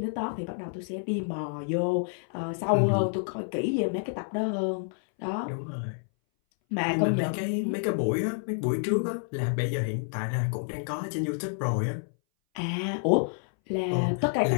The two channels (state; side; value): silent; right; 59 dB below the other